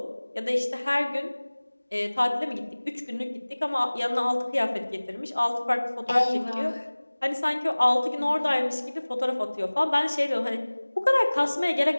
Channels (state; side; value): inverted; both; correlation -1.00